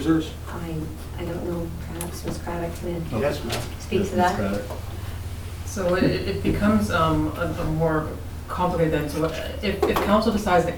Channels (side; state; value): both; identical; correlation 1.00